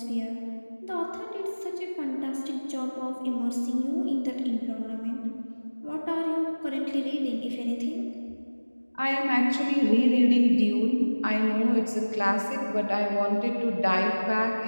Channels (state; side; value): inverted; both; correlation -1.00